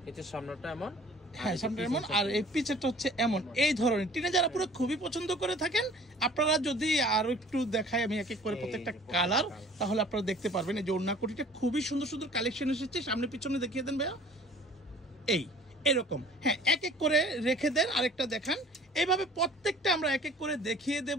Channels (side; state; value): both; normal; correlation 0.49